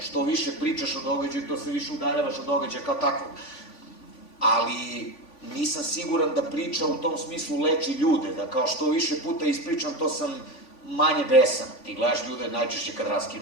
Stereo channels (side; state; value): right; late; 3.5 ms